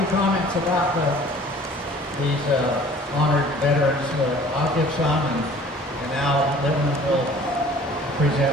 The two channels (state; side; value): normal; both; correlation 0.50